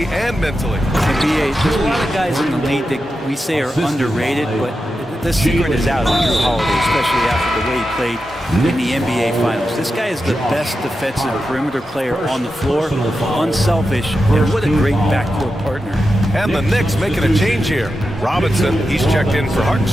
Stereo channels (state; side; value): normal; both; correlation 0.90